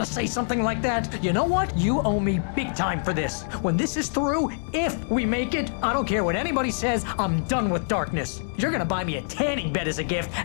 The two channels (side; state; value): right; silent; digital silence